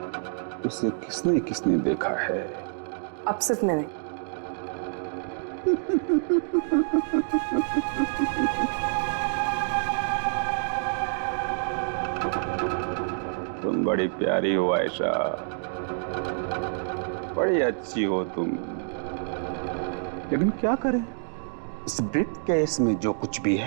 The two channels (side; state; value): left; silent; digital silence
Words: उसे किसने किसने देखा है? अब सिर्फ मैंने। तुम बड़ी प्यारी हो आयशा, बड़ी अच्छी हो तुम, लेकिन क्या करें, इस ब्रीफकेस में जो कुछ भी